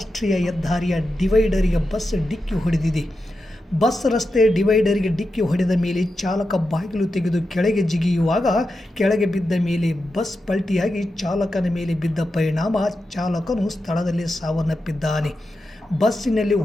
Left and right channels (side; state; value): both; normal; correlation 0.89